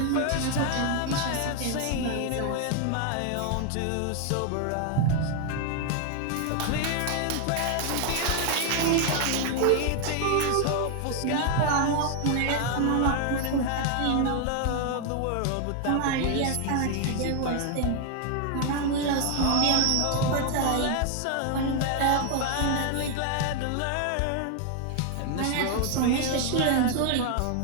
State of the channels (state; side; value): different; both; correlation 0.00